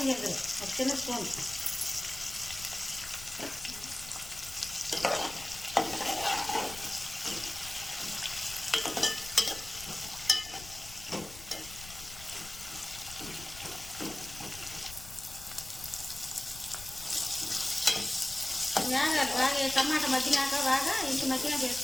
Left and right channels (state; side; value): noise; left; rumble, 16 dB below the sound